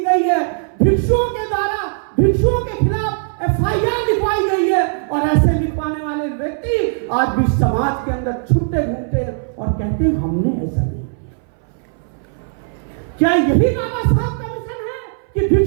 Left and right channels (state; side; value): silent; left; 62 dB below the other